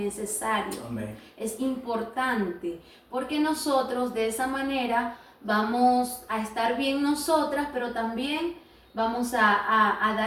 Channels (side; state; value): both; identical; correlation 1.00